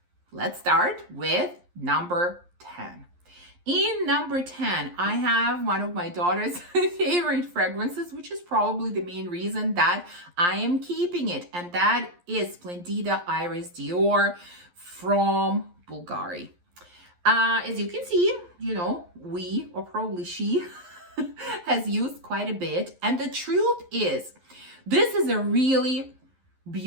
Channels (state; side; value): late; left; 11 ms